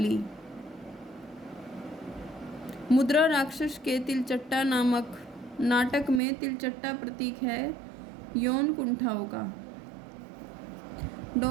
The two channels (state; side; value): drops out; left; at 6.2 s